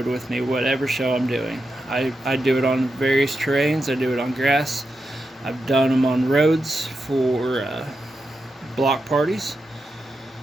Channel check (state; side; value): normal; both; correlation 0.88